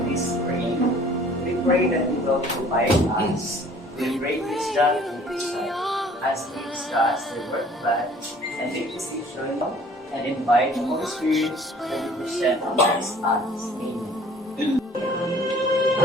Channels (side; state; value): both; normal; correlation 0.53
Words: this praying. We pray that you will provide us with great wisdom and insight as we discuss the word of God and make decisions and invite the Holy Spirit that you present amongst us. Amen.